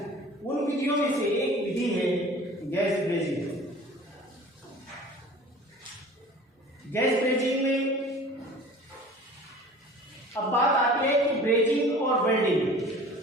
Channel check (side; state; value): both; normal; correlation 0.44